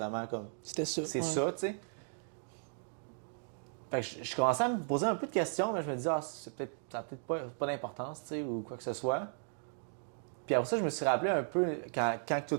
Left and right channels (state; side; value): silent; left; digital silence